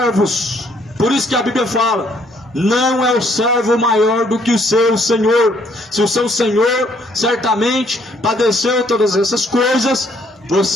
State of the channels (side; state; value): both; normal; correlation 0.66